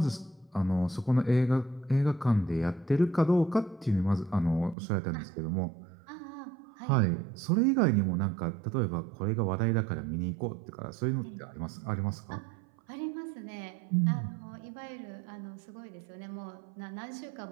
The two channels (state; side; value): drops out; left; at 4.8 s